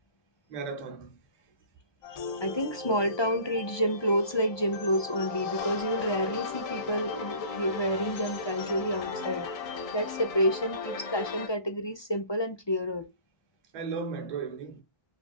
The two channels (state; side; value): late; right; 1.2 ms